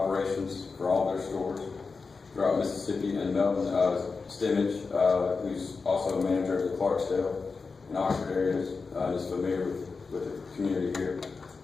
for all their stores throughout Mississippi, and Melvin Stimmage, who's also a manager of the Clarksdale and Oxford areas, is familiar with the community here.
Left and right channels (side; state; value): right; quieter; 4.5 dB